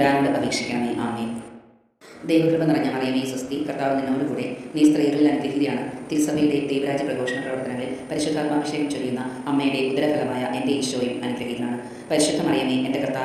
അപേക്ഷിക്കണമേ. ആമേൻ. ദൈവകൃപ നിറഞ്ഞ മറിയമേ സ്വസ്തി, കർത്താവ് നിന്നോട് കൂടെ, നീ സ്ത്രീകളിൽ അനുഗ്രഹീതയാണ്. തിരുസഭയുടെ ദൈവരാജ്യ പ്രഘോഷണ പ്രവർത്തനങ്ങളിൽ പരിശുദ്ധാത്മാഭിഷേകം ചൊരിയുന്ന അമ്മയുടെ ഉദരഫലമായ എൻ്റെ ഈശോയും അനുഗ്രഹീതനാണ്. പരിശുദ്ധ മറിയമേ, എൻ്റെ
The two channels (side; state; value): both; identical; correlation 1.00